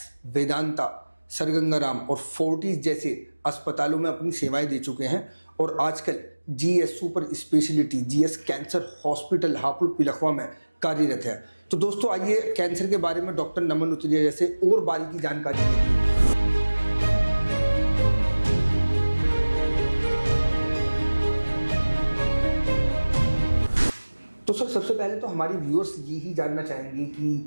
Vedanta, sir Gangaram और फोर्टिस जैसे अस्पतालों में अपनी सेवाएं दे चुके हैं, और आजकल GS super speciality GS cancer hospital Hapur Pilkhuwa में कार्यरत है। तो दोस्तों आइए कैंसर के बारे में डॉक्टर नमन उतरेजा से और बारीकी जानकारी लेते हैं। तो सर सबसे पहले तो हमारी व्यूअर्स यही जानना चाहेंगे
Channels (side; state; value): both; inverted; correlation -1.00